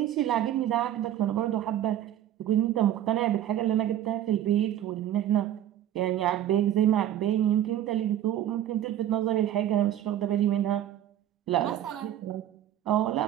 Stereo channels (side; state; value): left; quieter; 11.5 dB